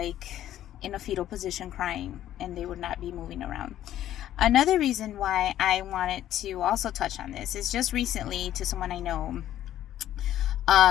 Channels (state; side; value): quieter; right; 12.2 dB